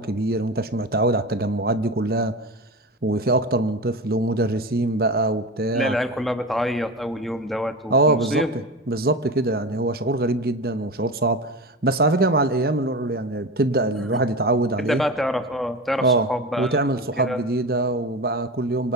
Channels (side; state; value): both; normal; correlation 0.25